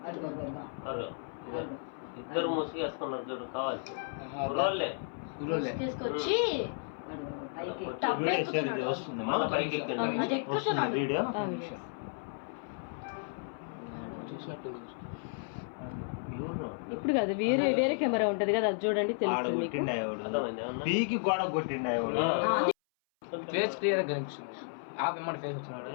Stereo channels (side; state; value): right; silent; 56 dB below the other